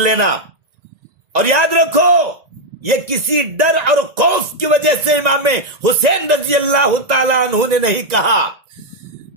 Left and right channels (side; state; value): left; late; 1.9 ms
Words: اور یاد رکھو، یہ کسی ڈر اور خوف کی وجہ سے امام حسین رضی اللہ تعالیٰ عنہ نے نہیں کہا،